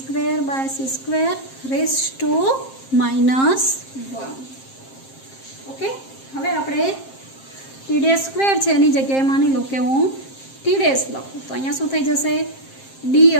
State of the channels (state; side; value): late; right; 7.5 ms